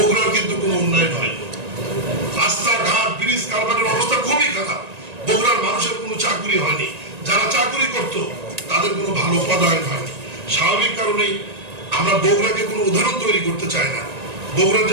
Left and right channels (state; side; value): late; left; 1.9 ms